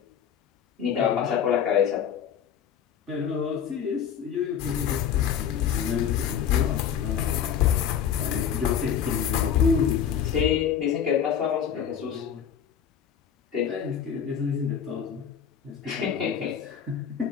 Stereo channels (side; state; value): right; quieter; 8.3 dB